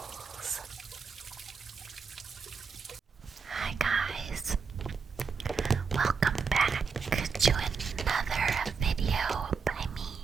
Hi guys, welcome back to another video by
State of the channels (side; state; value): left; quieter; 5.5 dB